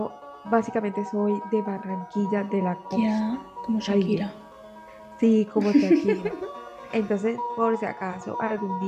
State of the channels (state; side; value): identical; both; correlation 1.00